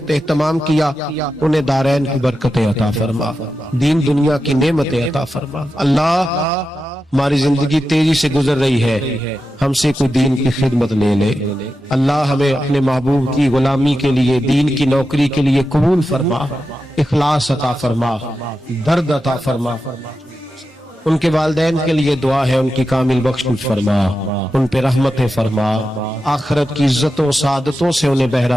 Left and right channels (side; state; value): both; normal; correlation 0.90